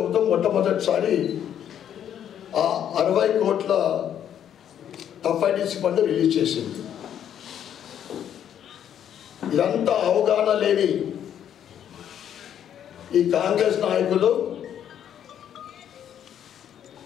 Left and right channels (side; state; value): right; quieter; 9.7 dB